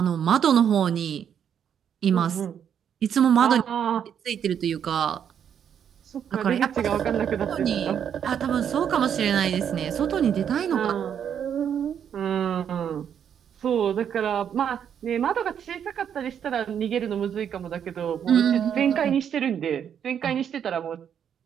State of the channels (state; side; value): quieter; left; 8.5 dB